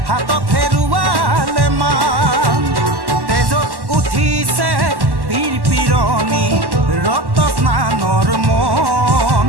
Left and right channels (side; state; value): left; late; 1.1 ms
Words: হাতত হেৰুৱালে মান তেজত উঠিছে বীৰ পিৰণি ৰক্ত স্নানৰ মন